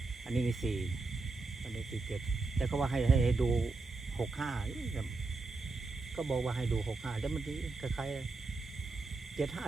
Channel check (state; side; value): quieter; left; 3.7 dB